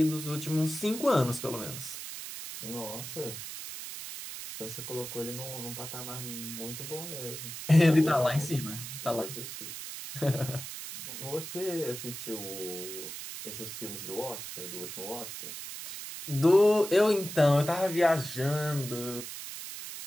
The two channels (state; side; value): noise; right; hiss, 9 dB below the sound